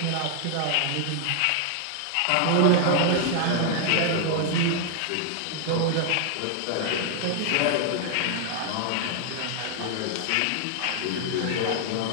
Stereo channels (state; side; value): different; both; correlation 0.00